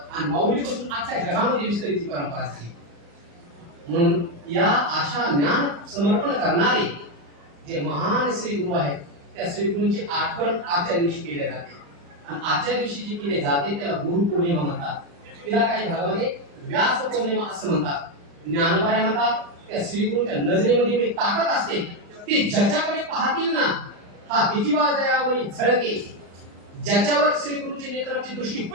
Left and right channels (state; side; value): late; left; 35 ms